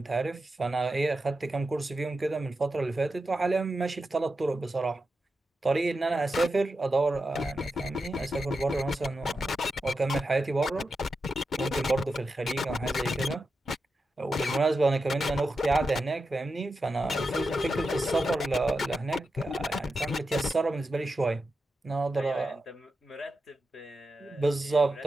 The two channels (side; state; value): both; normal; correlation 0.89